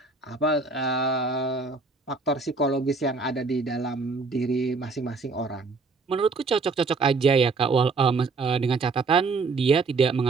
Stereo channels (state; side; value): quieter; left; 4.1 dB